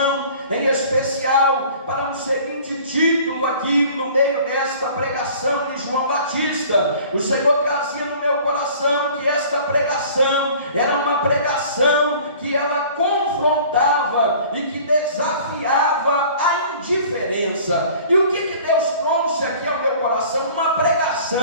em especial para um seguinte título aqui no meio desta pregação de João Batista. O Senhor trazia no meu coração que esta pregação era uma pregação que ela confrontava e que desafiava a indiferença. E o que Deus trouxe aqui ao meu coração? Uma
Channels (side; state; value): both; inverted; correlation -0.48